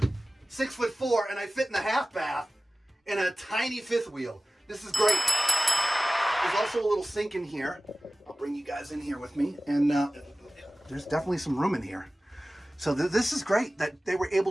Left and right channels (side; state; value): both; normal; correlation 0.97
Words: 6'4", and I fit in the half bath in a tiny fifth wheel. This is great. There's also a little sink in here. I'll bring you guys in here with me. And there's definitely some room in here. So this is great that they were